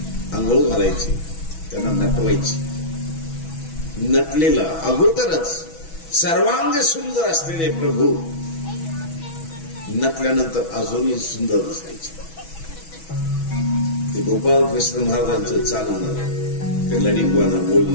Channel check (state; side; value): late; right; 6.1 ms